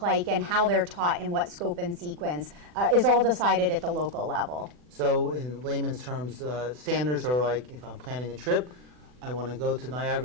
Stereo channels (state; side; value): late; left; 40 ms